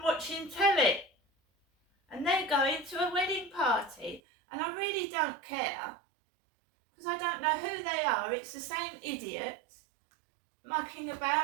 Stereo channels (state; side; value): drops out; left; at 4.2 s